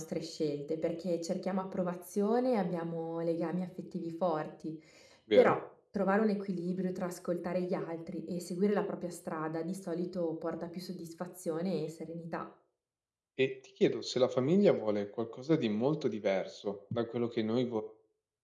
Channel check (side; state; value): both; identical; correlation 1.00